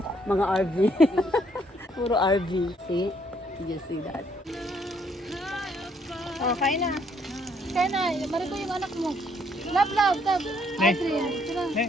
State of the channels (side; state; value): both; normal; correlation 0.68